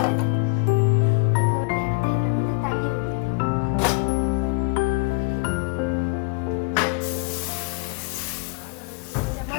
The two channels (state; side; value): quieter; right; 30.7 dB